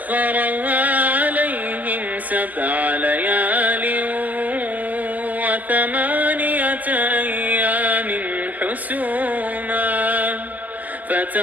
عليهم 7 ليال و8 أيام حسوما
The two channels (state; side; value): late; left; 0.080 ms